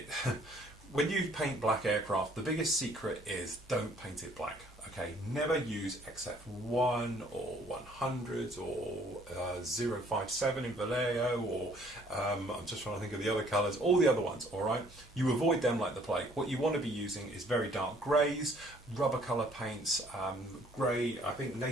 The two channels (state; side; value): normal; both; correlation 0.60